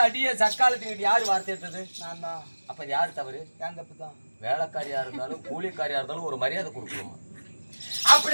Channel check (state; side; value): inverted; both; correlation -1.00